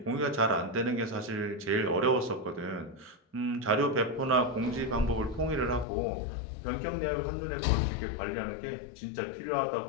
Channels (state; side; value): drops out; right; at 5.9 s